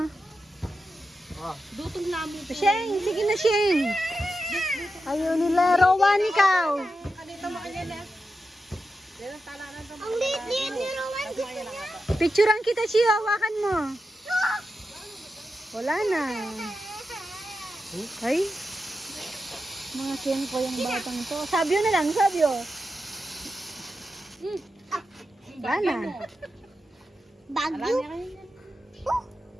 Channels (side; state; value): both; normal; correlation 0.89